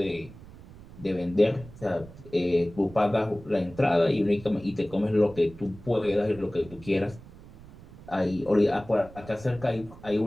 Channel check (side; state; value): right; noise; rumble, 19 dB below the sound